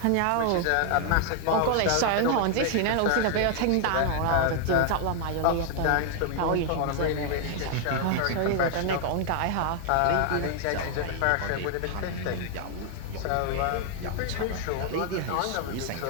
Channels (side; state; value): both; different; correlation 0.00